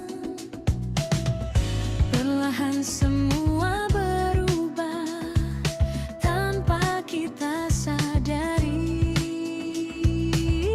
Perlahan semua berubah tanpa kita sadari.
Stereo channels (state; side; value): identical; both; correlation 1.00